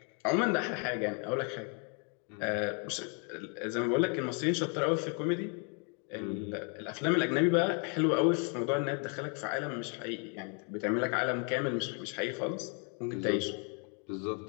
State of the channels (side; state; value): right; quieter; 38.2 dB